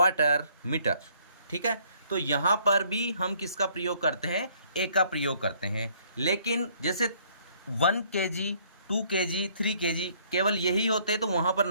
मीटर, ठीक है। तो यहाँ पर भी हम किसका प्रयोग करते हैं, ए का प्रयोग करते हैं। लेकिन जैसे 1 kg, 2 kg, 3 kg केवल यही होते तो वहाँ पर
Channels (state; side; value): inverted; both; correlation -0.62